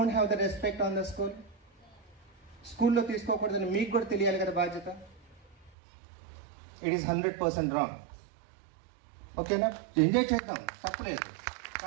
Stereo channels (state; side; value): drops out; left; at 5.7 s